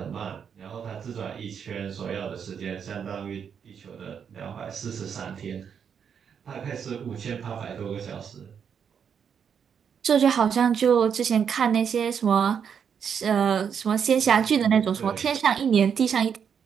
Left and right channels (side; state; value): left; quieter; 7.4 dB